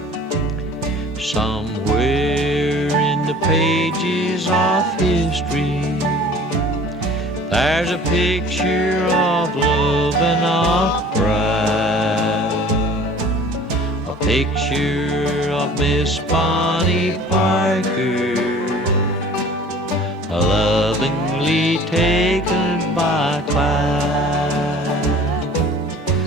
Somewhere pages of history. There's a picture of love and of pride, a picture of Miss Bonnie Parker, lovingly taken by Clyde.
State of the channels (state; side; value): normal; both; correlation 0.47